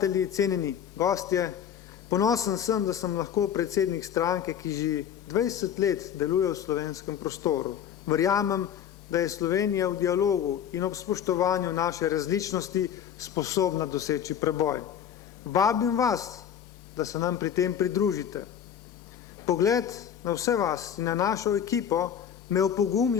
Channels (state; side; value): quieter; right; 9.0 dB